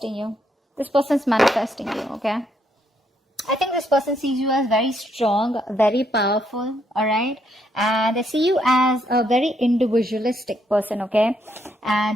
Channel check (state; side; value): normal; both; correlation 0.74